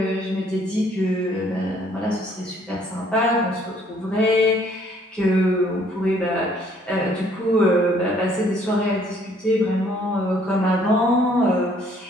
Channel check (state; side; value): normal; both; correlation 0.62